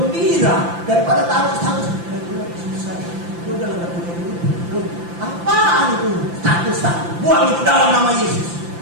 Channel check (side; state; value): left; late; 5.8 ms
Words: Daripada taruh status, gue lagi susah, gue udah gak punya duit. Apaan itu status? Buang itu dalam nama Yesus.